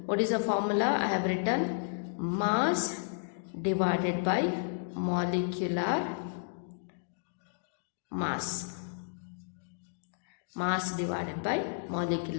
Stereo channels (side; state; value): right; silent; digital silence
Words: what is the formula? I have written mass divided by molecular mass. Mass divided by